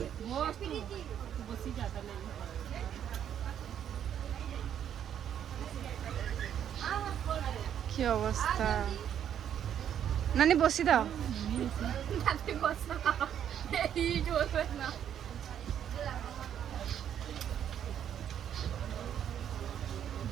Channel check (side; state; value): left; quieter; 9.5 dB